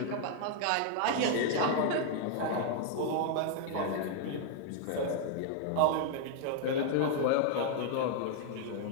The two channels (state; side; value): different; both; correlation 0.00